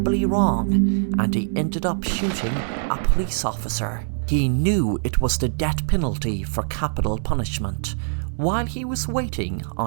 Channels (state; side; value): silent; left; digital silence